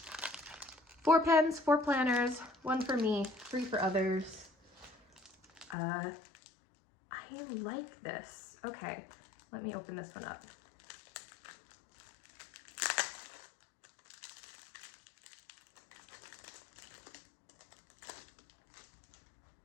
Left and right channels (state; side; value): drops out; right; at 5.8 s